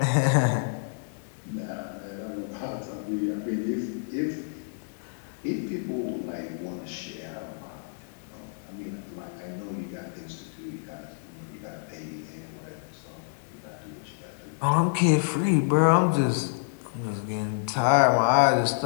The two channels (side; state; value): right; silent; 59 dB below the other